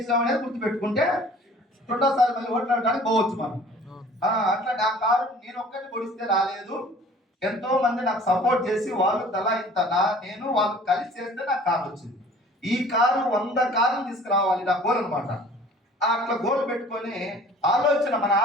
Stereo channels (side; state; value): both; normal; correlation 0.49